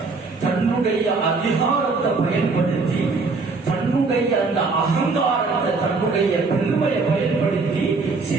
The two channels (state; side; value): quieter; left; 4.1 dB